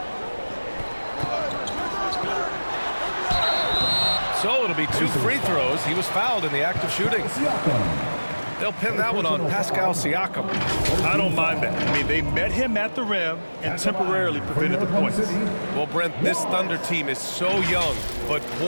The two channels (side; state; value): both; inverted; correlation -1.00